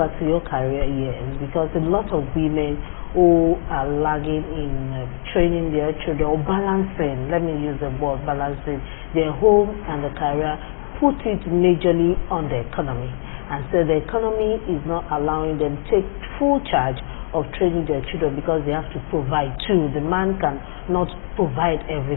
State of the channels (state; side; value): silent; right; digital silence